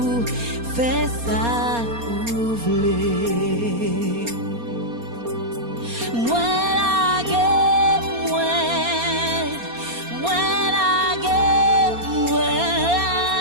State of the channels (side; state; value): left; late; 4.3 ms